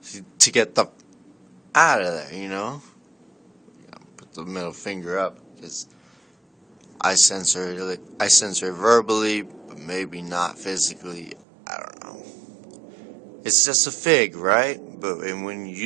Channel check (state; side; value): drops out; left; at 11.4 s